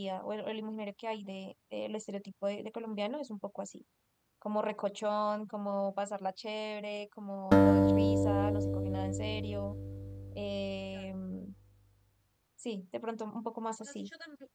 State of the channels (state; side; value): identical; both; correlation 1.00